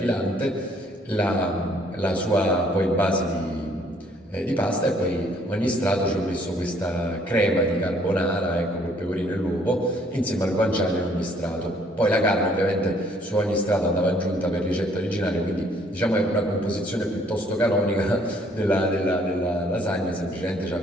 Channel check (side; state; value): both; normal; correlation 0.63